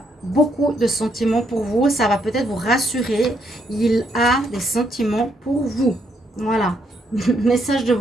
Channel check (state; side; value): normal; both; correlation 0.74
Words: beaucoup de sentiments pour vous. Ça va peut-être vous rassurer. Il a des sentiments pour vous. Voilà. Message de